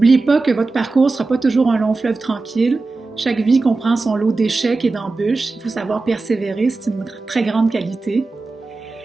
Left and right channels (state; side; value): quieter; left; 3.6 dB